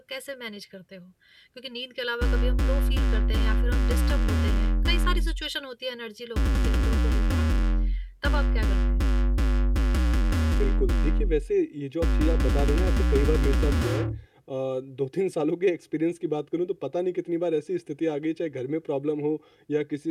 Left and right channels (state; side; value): identical; both; correlation 1.00